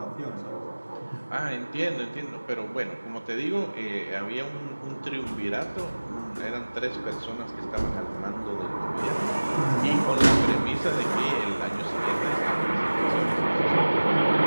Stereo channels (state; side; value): inverted; both; correlation -1.00